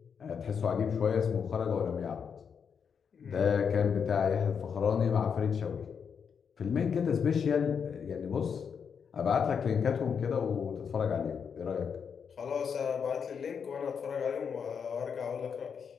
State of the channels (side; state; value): right; quieter; 6.7 dB